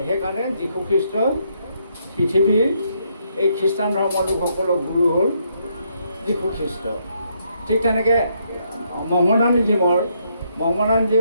সেইকাৰণে যীশু খ্ৰীষ্ট পৃথিৱীৰ এই খ্ৰীষ্টান ধৰ্মৰ লোকসকলৰ গুৰু হ'ল যীশু খ্ৰীষ্ট। ঠিক তেনেকৈ মহম্মদানিজিমৰ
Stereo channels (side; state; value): both; inverted; correlation -0.74